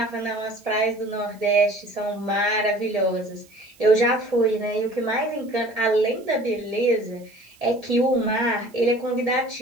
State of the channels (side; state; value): right; noise; hiss, 29 dB below the sound